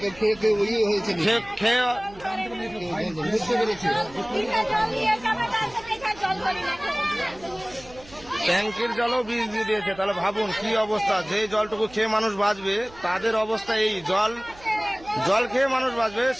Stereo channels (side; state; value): right; noise; hum, 22 dB below the sound